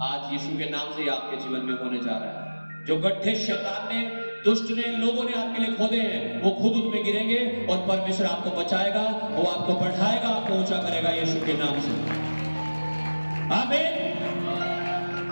आज यीशु के नाम से आपके जीवन में होने जा रहा है। जो गड्ढे शैतान ने, दुष्ट ने, लोगों ने आपके लिए खोदे हैं, वो खुद उनमें गिरेंगे और परमेश्वर आपको बचाएगा, वो आपको बढ़ाएगा, आपको ऊंचा करेगा यीशु के नाम से। आमीन।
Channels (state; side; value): inverted; both; correlation -1.00